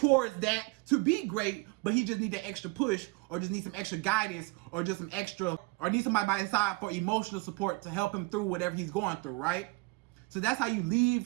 that to be great, but he just needs an extra push, or just needs some extra guidance, or just some extra, or need somebody by his side for emotional support to help him through whatever he's going through, right? So that's how you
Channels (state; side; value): quieter; left; 25.1 dB